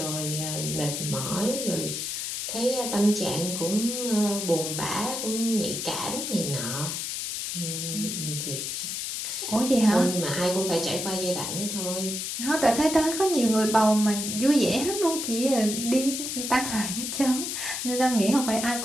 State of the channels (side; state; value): left; noise; hiss, 3 dB below the sound